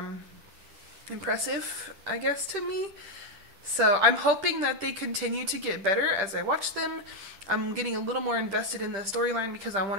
impressive, I guess, to me. So I'm hoping that they continue to get better as I watch them. I'm getting a little more invested in the storyline, because I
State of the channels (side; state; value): left; late; 10 ms